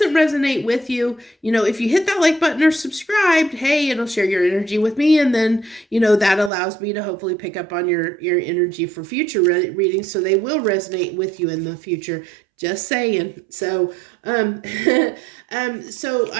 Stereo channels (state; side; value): drops out; left; at 6.5 s